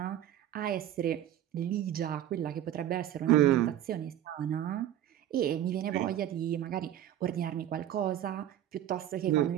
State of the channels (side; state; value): left; quieter; 11.6 dB